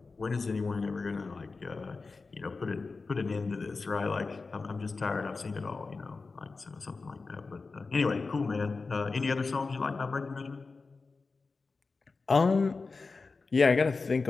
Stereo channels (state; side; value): quieter; right; 4.1 dB